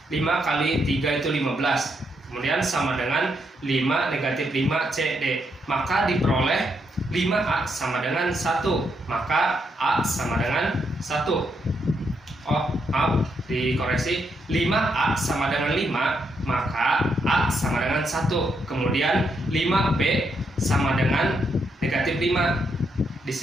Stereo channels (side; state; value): both; normal; correlation 0.79